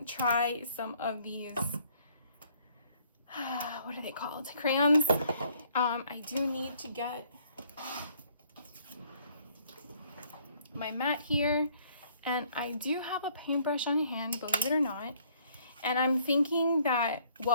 try some of these what are they called, crayons. I do need to get my mat here, and I do have a paintbrush on hand, believe it or not. And I'm thinking that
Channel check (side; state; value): both; inverted; correlation -0.63